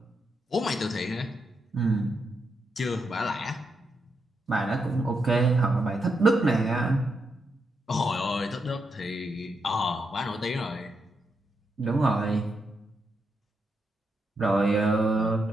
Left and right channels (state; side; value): normal; both; correlation 0.82